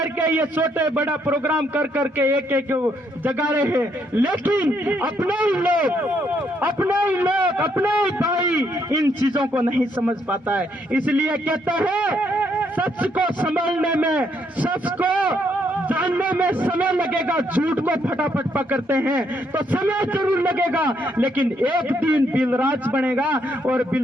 ये छोटे बड़ा प्रोग्राम कर करके एक एक जगा रहे हैं, लेकिन अपने ही लोग, अपने ही भाई इन चीजों को नहीं समझ पाता है। इसलिए कहते हैं सच को संभालने में, सच को जानने में समय लगेगा, झूठ को फटाफट पकड़ते हैं तो समय जरूर लगेगा, लेकिन एक दिन बिलराज बनेगा और बिल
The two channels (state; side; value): normal; both; correlation 0.73